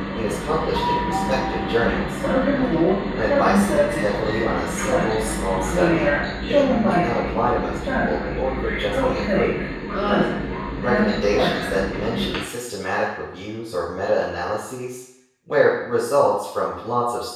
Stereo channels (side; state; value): both; identical; correlation 1.00